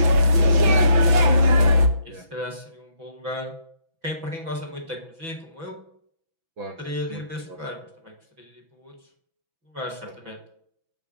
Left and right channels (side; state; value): left; late; 6.1 ms